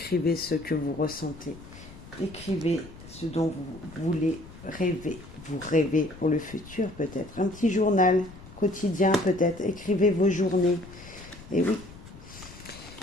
ce que vous ressentez. Écrivez ce dont vous voulez rêver. Vous rêvez pour le futur peut-être. Un petit journal quotidien peut-être. Écrivez vos journées. Et oui.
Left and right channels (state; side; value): noise; left; rumble, 18 dB below the sound